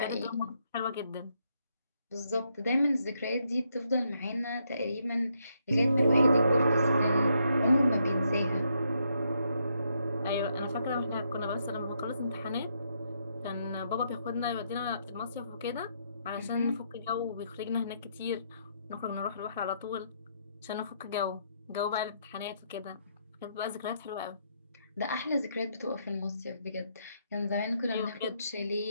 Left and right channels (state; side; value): inverted; both; correlation -0.76